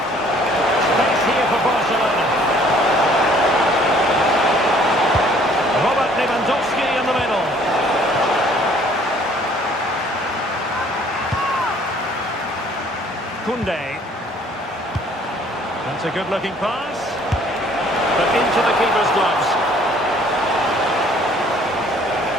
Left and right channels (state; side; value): normal; both; correlation 0.58